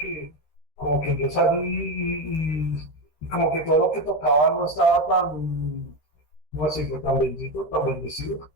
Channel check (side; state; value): right; late; 13 ms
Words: yo salí y como que todo lo que tocaba no estaba tan, no sé, tan bendito, tan bendecido.